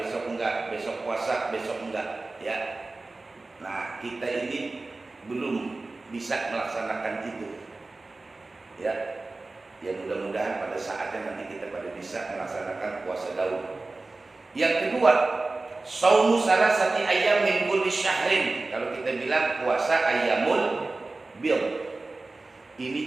enggak, besok puasa, besok enggak, ya. Nah, kita ini belum bisa melaksanakan itu. Ya. Ya mudah-mudahan pada saatnya nanti kita pada bisa melaksanakan puasa Daud. Yang kedua, shaumu salasati ayyam min kulli syahrin. Kalau kita bilang puasa ayyamul bid. Ini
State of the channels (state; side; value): quieter; left; 3.3 dB